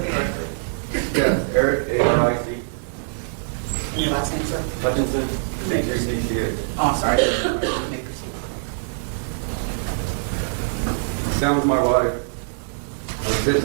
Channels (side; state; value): left; silent; 63 dB below the other